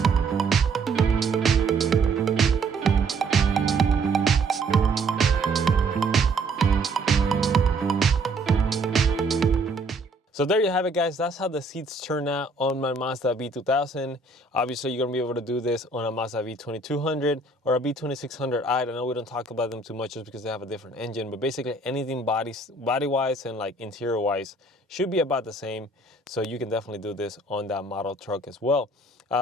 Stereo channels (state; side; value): quieter; left; 3.1 dB